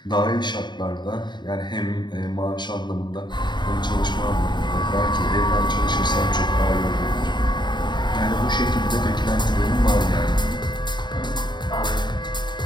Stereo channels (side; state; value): right; late; 0.22 ms